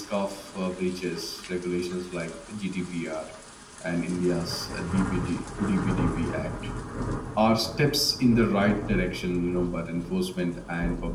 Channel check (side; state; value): both; identical; correlation 1.00